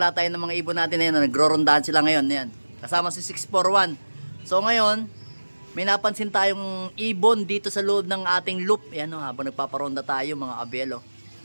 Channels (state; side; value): inverted; both; correlation -1.00